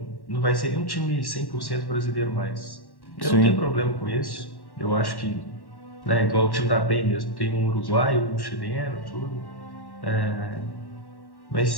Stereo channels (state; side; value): late; right; 1.1 ms